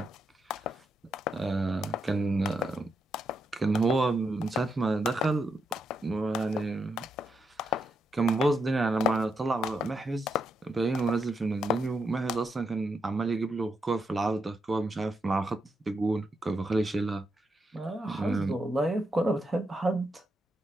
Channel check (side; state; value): both; normal; correlation 0.81